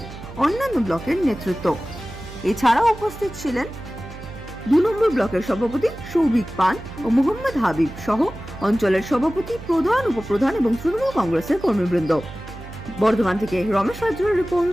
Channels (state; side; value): noise; right; hum, 14 dB below the sound